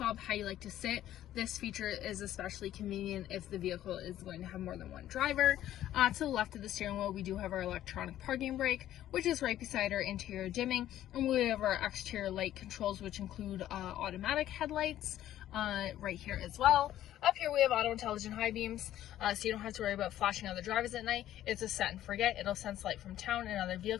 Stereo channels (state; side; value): quieter; right; 12.7 dB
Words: how you like to sit. This feature is especially convenient if the vehicle is going to have more than one driver. To the left of the steering wheel, we do have our electronic parking brake, which is right beside our interior dimming, and we have our exterior light controls, which include automatic headlights, right here as well. Up here we have auto intelligent high beams, so you don't have to worry about flashing other drivers at night. It's a set and forget. It'll sense light from town and other